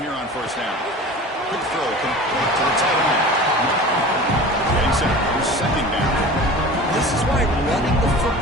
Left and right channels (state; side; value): normal; both; correlation 0.37